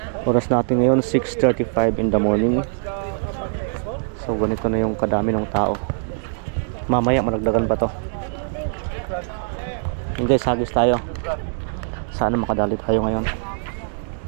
Oras natin ngayon 6:35 in the morning. So ganito na yung kadami ng tao. Mamaya managdagan pa to. Yung guys, hagis tayo. Sana makadali tayo ngayon.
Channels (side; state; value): left; silent; digital silence